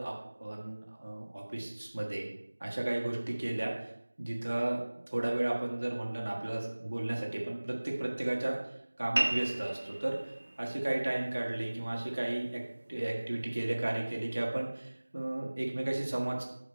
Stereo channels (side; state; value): both; inverted; correlation -1.00